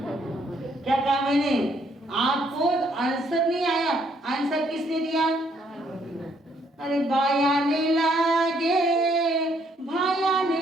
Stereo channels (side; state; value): both; normal; correlation 0.69